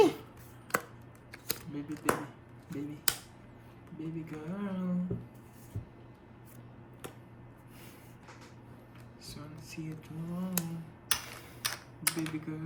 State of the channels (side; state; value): both; identical; correlation 1.00